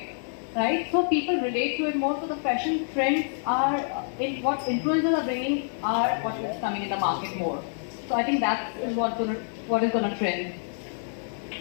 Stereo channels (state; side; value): silent; right; digital silence